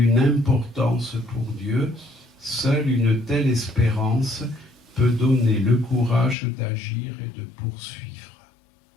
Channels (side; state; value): right; drops out; at 6.4 s